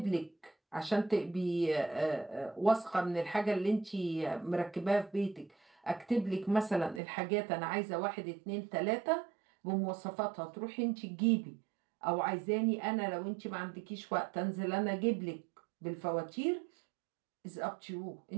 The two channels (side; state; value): left; drops out; at 7.0 s